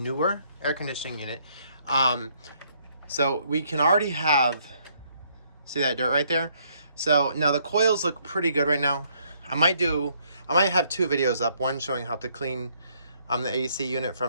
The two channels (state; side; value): inverted; both; correlation -0.68